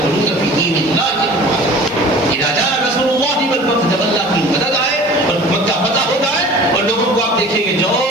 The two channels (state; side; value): noise; left; hiss, 29 dB below the sound